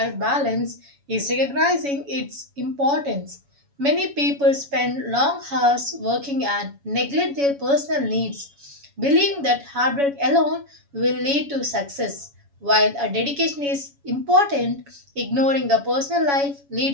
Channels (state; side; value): late; left; 7.1 ms